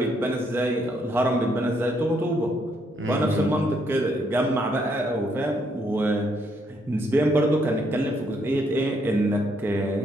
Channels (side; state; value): both; normal; correlation 0.73